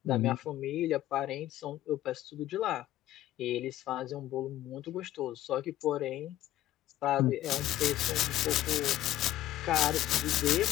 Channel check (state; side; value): quieter; right; 13.8 dB